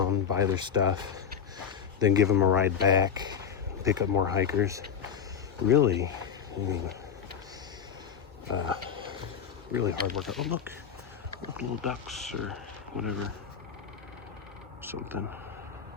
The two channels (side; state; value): right; quieter; 7.4 dB